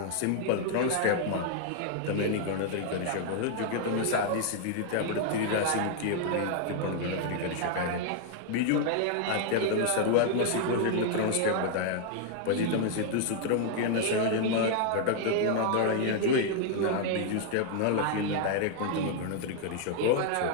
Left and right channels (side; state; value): both; different; correlation 0.00